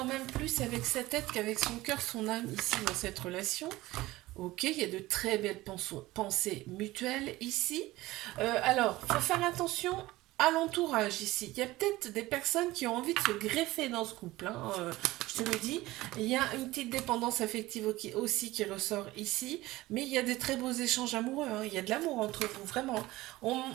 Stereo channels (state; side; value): quieter; left; 18.2 dB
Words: même plus avec sa tête qu'avec son cœur, son âme ici dans cette relation. Ok, il y a de très belles pensées mutuelles ici. Alors, il faut faire attention à l'entourage ici. Il y a peut-être des personnes qui ont envie de se greffer dans ce couple. Hein, je te le dis. Il y a une petite dépendance affective aussi qui ressort ici. Mais il y a des très beaux échanges amoureux. Hein, il y a de l'amour entre vous, vraiment. On